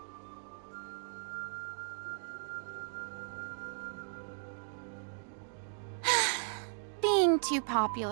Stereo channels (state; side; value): silent; left; digital silence